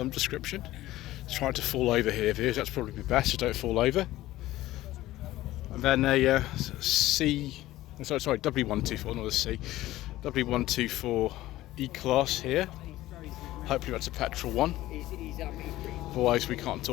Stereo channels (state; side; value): quieter; right; 16.0 dB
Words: description. It's trying to fall over here, viewers. That's probably the best, so don't fall over. And then a W124, not a C, W124 E-Class here. Hopefully that's a petrol one. Otherwise we can't